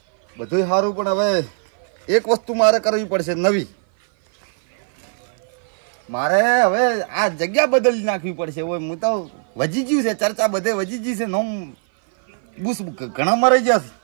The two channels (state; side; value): silent; left; 58 dB below the other